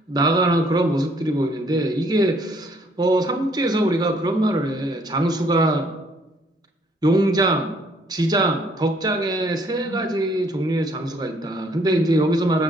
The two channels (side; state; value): both; normal; correlation 0.64